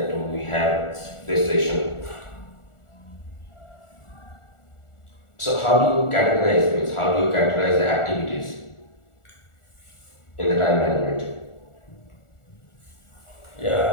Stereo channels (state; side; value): late; right; 1.4 ms